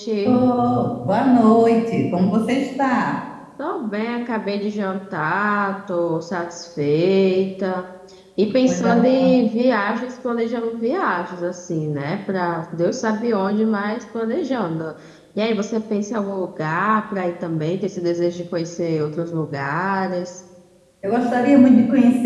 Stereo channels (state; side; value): identical; both; correlation 1.00